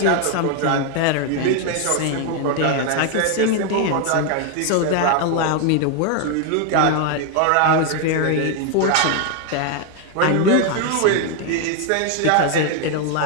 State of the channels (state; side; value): different; both; correlation 0.01